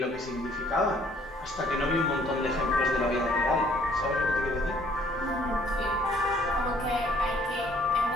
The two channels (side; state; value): both; normal; correlation 0.61